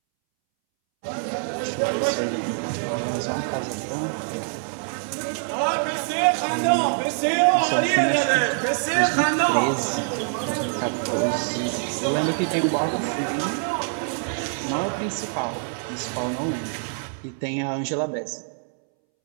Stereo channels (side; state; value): left; silent; 62 dB below the other